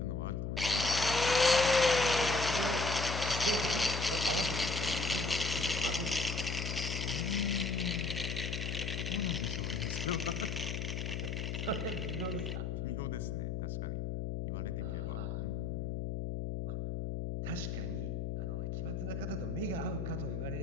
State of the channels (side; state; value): left; noise; hum, 2 dB below the sound